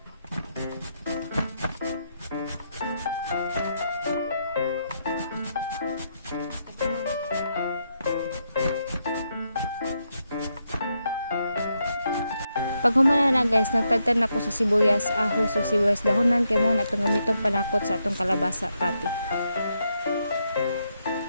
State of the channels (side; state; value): both; inverted; correlation -0.80